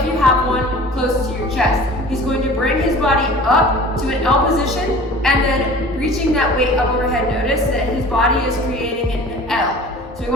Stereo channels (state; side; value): normal; both; correlation 0.42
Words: you have one, close to your chest. He's going to bring his body up to an L position and then reaching that weight up overhead. Notice that his body is creating an L. So he